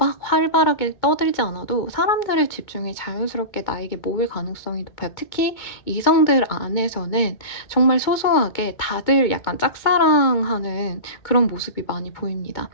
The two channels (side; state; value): right; late; 2.2 ms